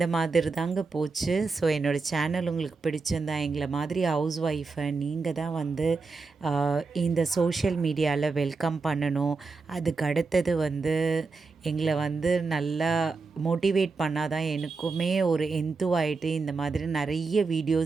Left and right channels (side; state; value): left; quieter; 4.2 dB